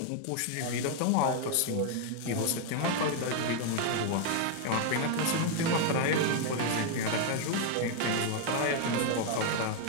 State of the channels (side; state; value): both; different; correlation 0.00